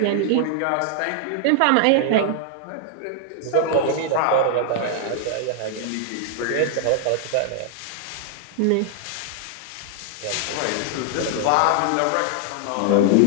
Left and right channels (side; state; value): both; different; correlation -0.01